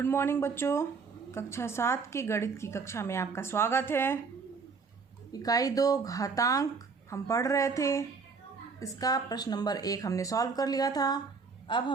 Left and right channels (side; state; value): left; quieter; 5.0 dB